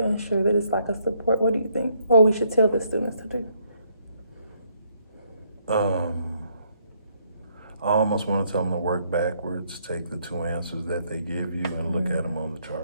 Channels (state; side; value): inverted; both; correlation -0.71